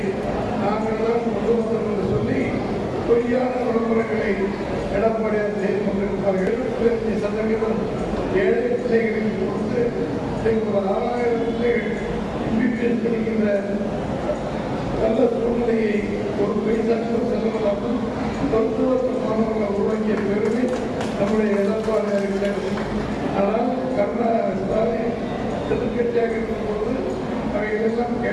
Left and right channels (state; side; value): identical; both; correlation 1.00